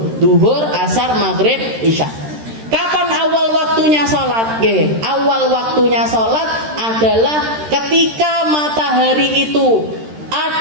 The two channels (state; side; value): late; left; 13 ms